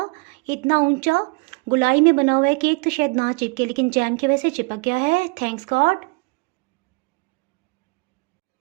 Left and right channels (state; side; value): quieter; left; 29.5 dB